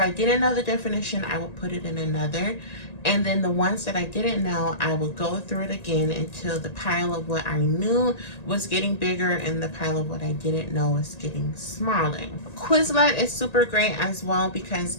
didn't know the definition, I would put it in another. And then the ones that I didn't know, I would go through it again until the pile of what I knew was getting bigger and the pile of what I didn't know was getting smaller. Quizlet is super great as well because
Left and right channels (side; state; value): right; late; 1.9 ms